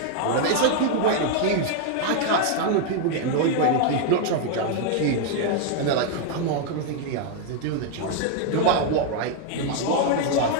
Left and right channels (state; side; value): different; both; correlation 0.00